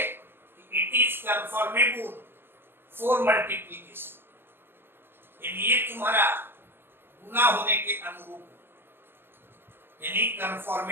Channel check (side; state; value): left; late; 0.10 ms